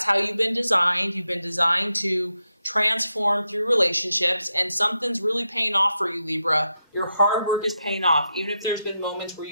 how you've been designed. You've been designed to transform through relationships, and something's really paying off for you, Libra. Your hard work is paying off. Even if there's been moments where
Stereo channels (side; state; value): both; inverted; correlation -0.86